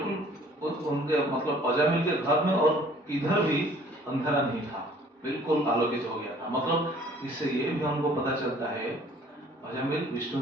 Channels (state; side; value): normal; both; correlation 0.54